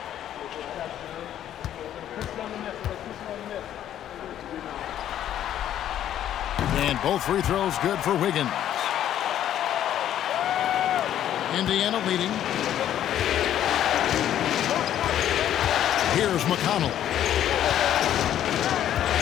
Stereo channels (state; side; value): quieter; right; 11.1 dB